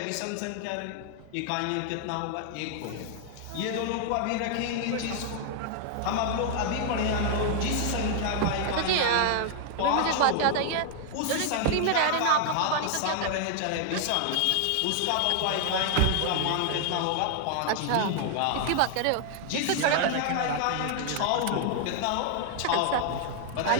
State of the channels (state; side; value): different; both; correlation 0.00